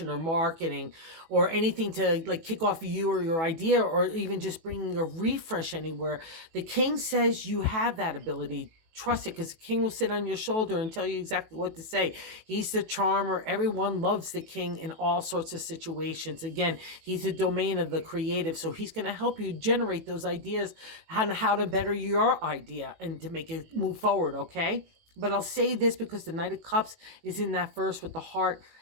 or marketing or anything to like kick off you or your idea or even just bringing a refresh anywhere. The King says you have that ability trust it, because the king will sit on your shoulder and tell you exactly what to say. He's the charmer. Everyone loves the king in all sorts of situations. Again, he's the domain of the creative, so he's going to help you generate those ideas on how to better your idea and to make it move forward, okay? But I'll say this because the Knight of Cups is in that verse with the heart,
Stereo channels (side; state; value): left; late; 18 ms